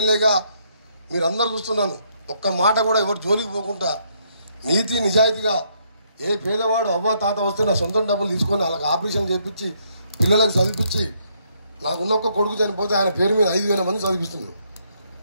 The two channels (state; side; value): inverted; both; correlation -0.72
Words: మీరందరూ చూస్తున్నాను. ఒక్క మాట కూడా ఎవరు జోలికి పోకుండా నీతి నిజాయితీగా ఏ పేదవాడు అవ్వ తాత వస్తే నా సొంతం డబ్బులు తీసుకొని వాళ్ళకి ఆపరేషన్ చేయించి పిల్లలకు చదివించి నాకున్న ఒక్క కొడుకు చనిపోతే ఆయన పేరు మీద 5,000 మంది చదివిస్తున్నాను.